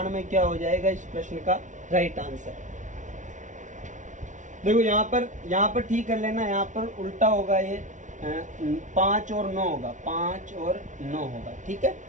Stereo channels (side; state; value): left; late; 0.36 ms